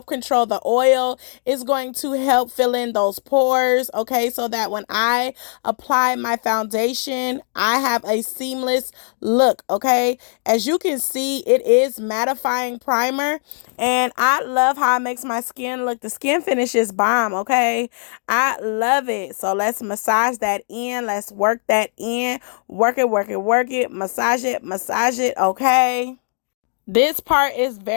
control the oil. It's going to help fill in those pores, okay, so that when I apply my foundation, I have a seamless look, okay? As you can see, it is mattifying primer, and I love how it makes my skin look. The skin finish is bomb, okay? I love it. So let's massage that in. Let's work that in. Work it, work it, work it. Massage it, okay? This part is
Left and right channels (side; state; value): right; silent; digital silence